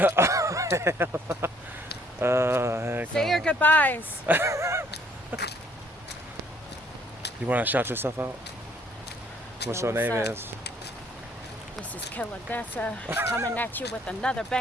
Say your goodbyes. You want to shout yourself out? What's your name up? is? This is Killer Dessa coming at you with another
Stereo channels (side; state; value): both; normal; correlation 0.63